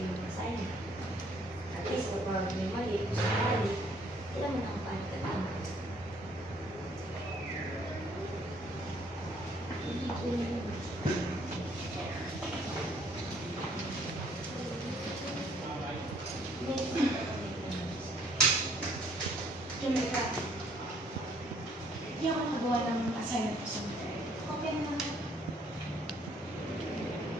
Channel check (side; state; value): both; normal; correlation 0.63